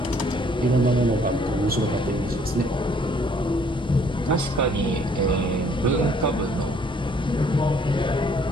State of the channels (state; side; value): normal; both; correlation 0.61